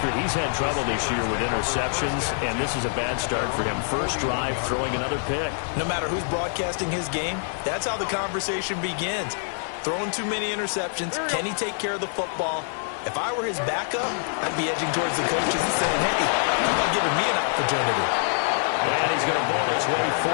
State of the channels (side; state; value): right; silent; 57 dB below the other